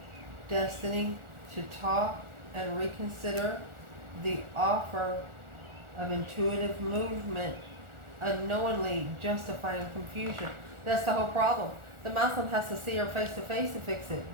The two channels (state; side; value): late; left; 1.4 ms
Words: Destiny to talk and reconsider the offer of intuitive movement unknowingly justifying confusion. That's the whole problem. The masculine has to see her face to face to fix it.